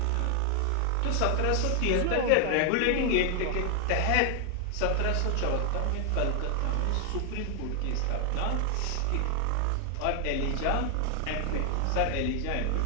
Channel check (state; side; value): different; both; correlation 0.00